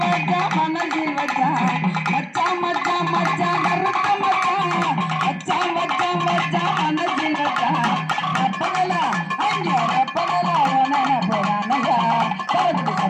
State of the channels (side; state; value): both; identical; correlation 1.00